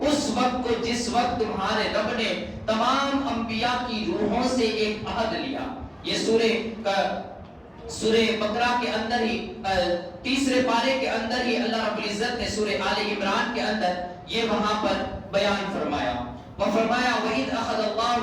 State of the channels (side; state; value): both; identical; correlation 1.00